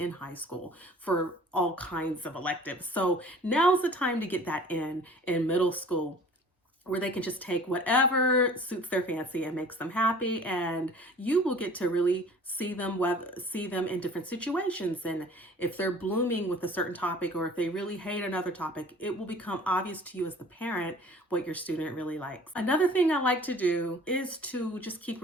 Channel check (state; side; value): normal; both; correlation 0.47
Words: high school for all kinds of electives. So now's the time to get that in middle school, where they can just take whatever suits their fancy and makes them happy, and you will get to really see them in different situations. And if they're blooming with a certain topic, or if they really hate another topic, it will become obvious to you as the parent what your student really likes. Another thing I like to do is to just keep